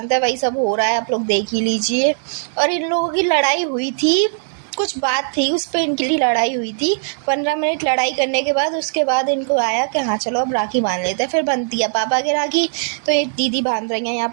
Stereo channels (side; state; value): left; silent; digital silence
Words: हैं वही सब हो रहा है, आप लोग देख ही लीजिए। और इन लोगों की लड़ाई हुई थी, कुछ बात थी उस पर इनके लिए लड़ाई हुई थी। 15 मिनट लड़ाई करने के बाद उसके बाद इनको आया कि हाँ चलो अब राखी बांध लेते हैं। फिर बनती है पापा की राखी, तो एक दीदी बांध रही हैं यहाँ